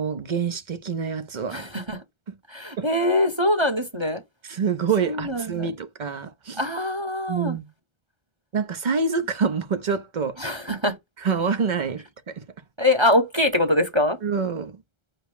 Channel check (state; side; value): late; left; 1.3 ms